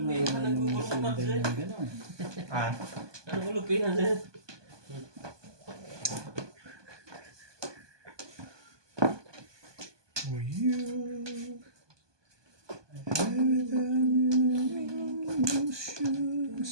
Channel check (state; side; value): late; left; 1.2 ms